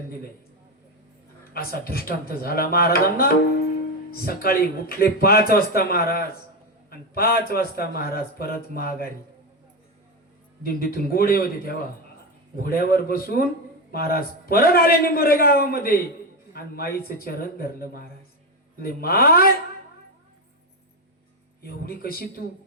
दिलंय. असा दृष्टांत झाला महाराजांना. सकाळी उठले 5 वाजता महाराज, आणि 5 वाजता महाराज परत माघारी. दिंडीतून घोडे होते तेव्हा, घोड्यावर बसून महाराज परत आले निंबोरे गावामध्ये आणि माईचं चरण धरलं महाराज. म्हणजे माय, एवढी कशी तू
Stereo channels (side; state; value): both; normal; correlation 0.11